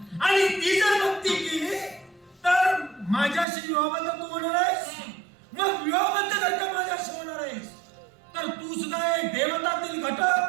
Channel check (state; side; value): drops out; left; at 3.5 s